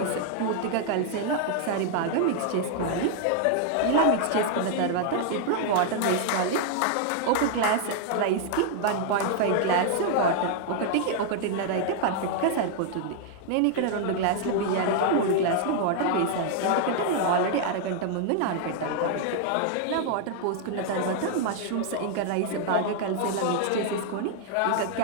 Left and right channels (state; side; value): different; both; correlation 0.00